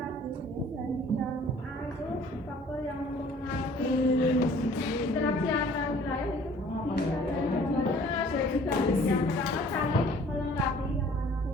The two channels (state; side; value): normal; both; correlation 0.53